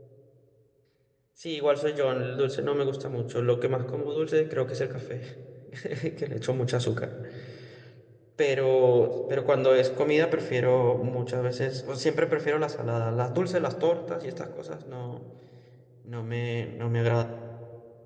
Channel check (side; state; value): both; identical; correlation 1.00